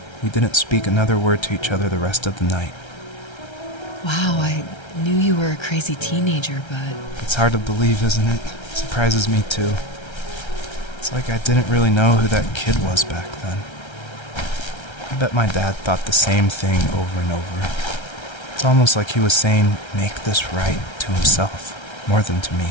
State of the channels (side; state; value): right; late; 1.3 ms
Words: We didn't speak another word to each other the rest of the night. Wow, I knew you were a crazy teenager, but... It's hard to believe, isn't it? It surprises me too. It's like I didn't really know who that kid was back then. I bet my dad thought the same thing over and over. It's almost like he was saying, "Make this right," to himself, more than to me.